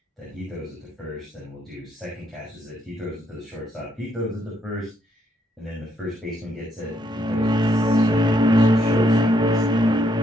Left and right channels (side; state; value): both; normal; correlation 0.73